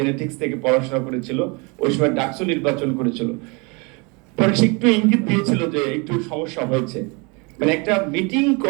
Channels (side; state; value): left; quieter; 30.2 dB